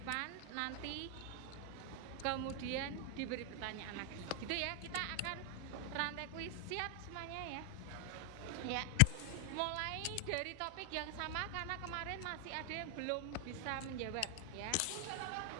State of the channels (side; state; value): both; different; correlation 0.00